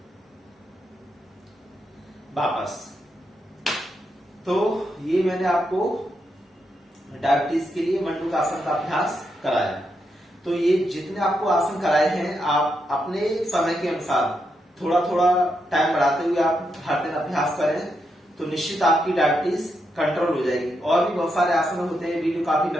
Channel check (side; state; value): both; normal; correlation 0.82